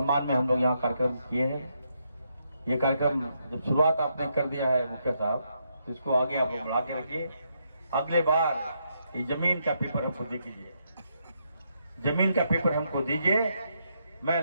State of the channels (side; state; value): both; inverted; correlation -0.78